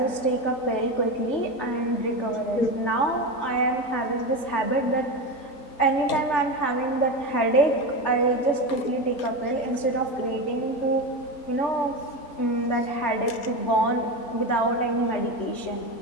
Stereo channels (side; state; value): right; late; 3.4 ms